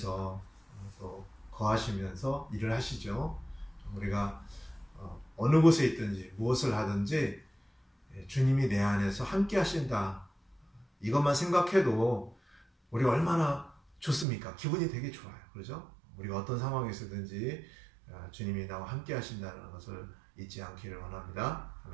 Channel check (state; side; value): drops out; left; at 14.2 s